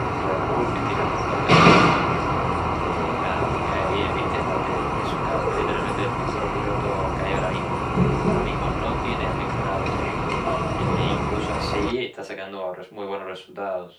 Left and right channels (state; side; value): identical; both; correlation 1.00